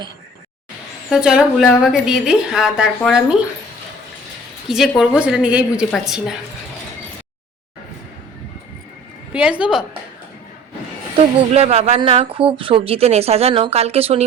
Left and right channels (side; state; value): both; normal; correlation 0.48